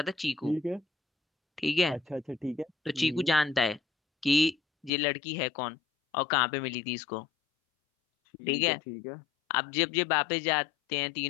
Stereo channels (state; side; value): drops out; right; at 4.9 s